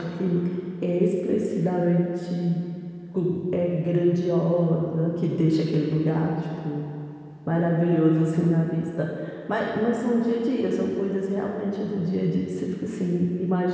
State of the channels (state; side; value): identical; both; correlation 1.00